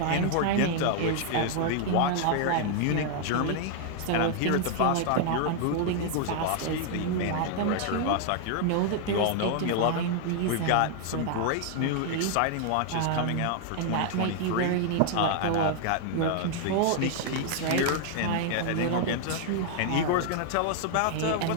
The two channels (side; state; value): both; different; correlation 0.00